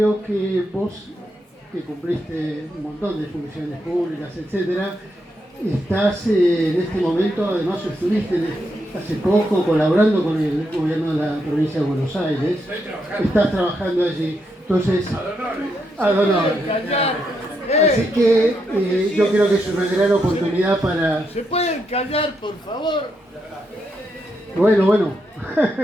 que vos, que cumpliste un montón de funciones públicas, etcétera, estás en este momento, además estuviste hace poco colaborando con el gobierno de la provincia de Buenos Aires, estás trabajando allí, entonces, ad honorem. Así que yo creo que es una gran oportunidad para... ¿Se pueden callar, por favor? Bueno,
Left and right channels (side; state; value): both; normal; correlation 0.81